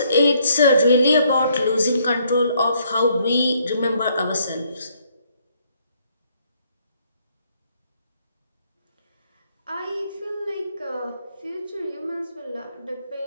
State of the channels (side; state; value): both; inverted; correlation -0.69